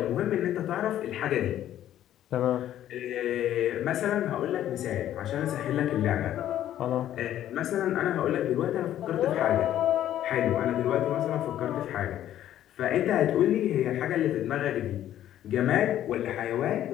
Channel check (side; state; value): right; quieter; 11.9 dB